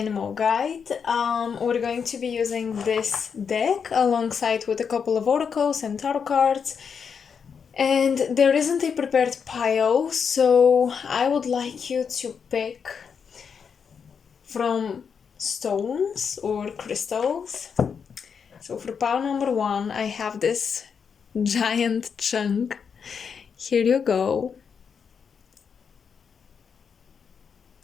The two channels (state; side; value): quieter; right; 6.5 dB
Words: guide. We're going to be using this deck alongside with a couple of oracles and tarot cards. And there isn't a prepared pile, so I would like you to pick from stones or crystals. So for pile number 1, I have this giant chunk. Here you go.